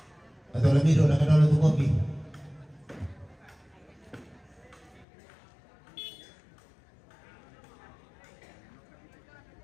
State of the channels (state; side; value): drops out; right; at 5.1 s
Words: Atau lamiro na kadalo tu kopi.